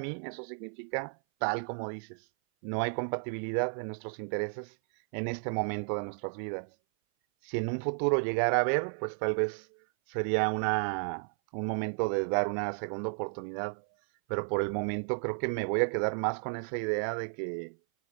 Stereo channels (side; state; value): left; silent; 56 dB below the other